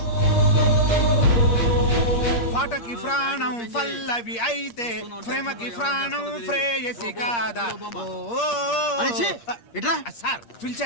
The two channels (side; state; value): right; late; 8.6 ms